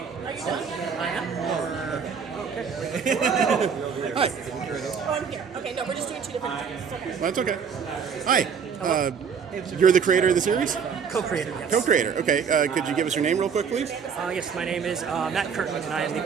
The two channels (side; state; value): left; quieter; 6.5 dB